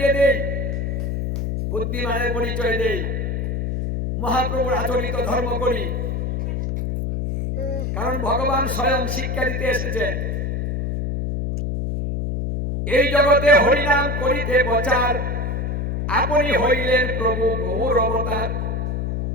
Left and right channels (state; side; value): noise; left; hum, 1 dB below the sound